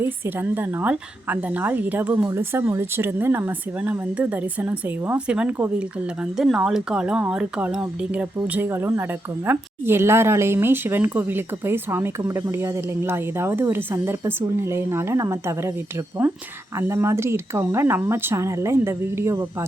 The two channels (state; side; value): normal; both; correlation 0.84